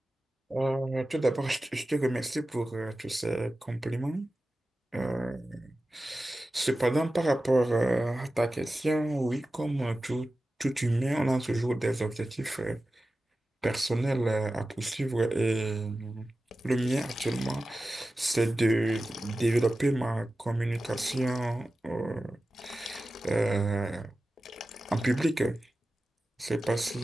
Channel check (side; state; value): both; normal; correlation 0.94